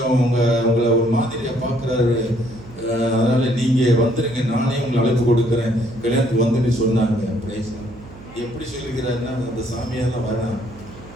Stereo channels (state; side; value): noise; right; hum, 18 dB below the sound